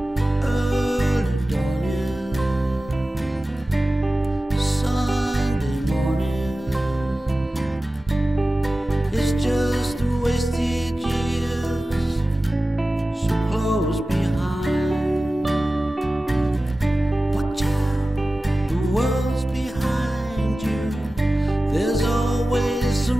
Early dawning, Sunday morning. It's just a wasted years so close behind. Watch out, the world's behind you. There's always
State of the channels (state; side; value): normal; both; correlation 0.96